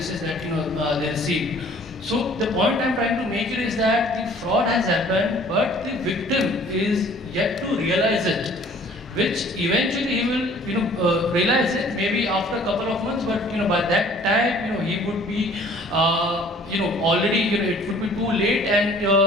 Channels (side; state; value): both; normal; correlation 0.53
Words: that they received. So the point I'm trying to make is that the fraud has happened, but the victim is yet to realize it, which eventually he will realize it maybe after a couple of months, but by that time he would be already it would be too late, and